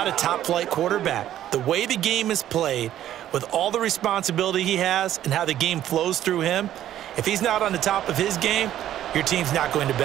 a top-flight quarterback. The way the game is played, with all the responsibility he has and how the game flows through him, if he's not on the top of his game, your team's not going to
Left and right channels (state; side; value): quieter; left; 12.0 dB